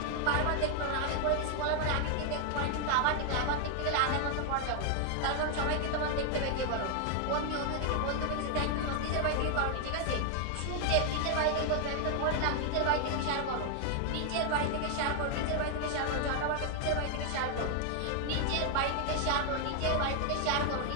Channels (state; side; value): different; both; correlation 0.00